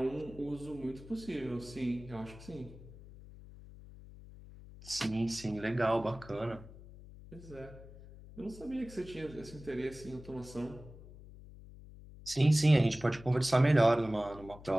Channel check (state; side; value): noise; left; hum, 17 dB below the sound